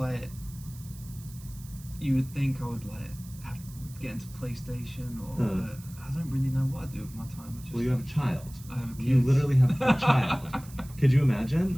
you would think I would have to get into PlayStation or but I don't really know what I do with my time. I just, Well, you have a child. I have a kid. You literally have a child. Could you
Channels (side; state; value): right; noise; hiss, 20 dB below the sound